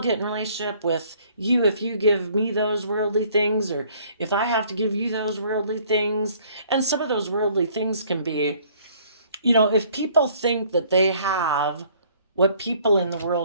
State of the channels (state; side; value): inverted; both; correlation -0.59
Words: in a relationship with you if you give me those worldly things, or if I have to give you those worldly things. And some of those worldly things can be, if people think that they have what people in the